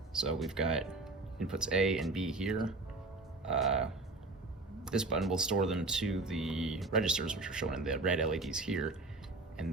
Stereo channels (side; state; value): left; quieter; 3.3 dB